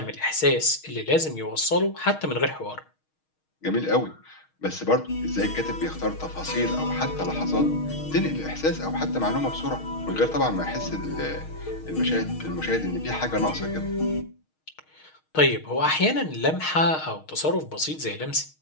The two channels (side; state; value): right; late; 6.4 ms